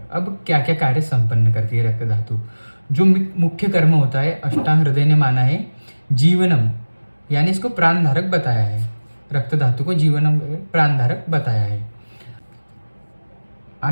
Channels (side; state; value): both; inverted; correlation -1.00